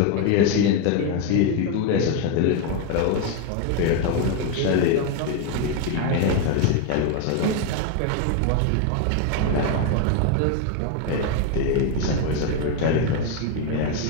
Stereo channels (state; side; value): different; both; correlation 0.01